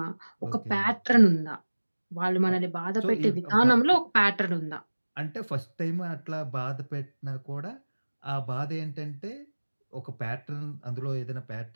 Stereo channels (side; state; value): both; inverted; correlation -1.00